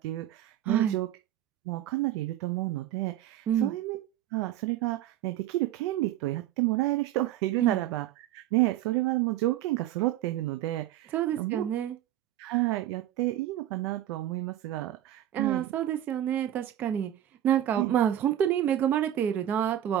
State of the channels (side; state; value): left; quieter; 12.3 dB